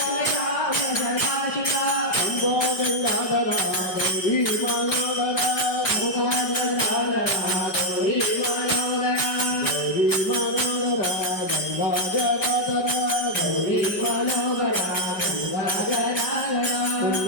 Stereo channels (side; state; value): right; late; 5.0 ms